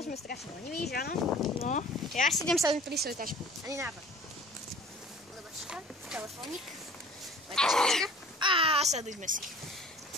sme strašne leniví, že áno? No. Ja si idem sadnúť pri svoju tašku. Ani nápad. Lebačka, telefónik. Lebačka. A sadujme si.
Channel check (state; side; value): normal; both; correlation 0.46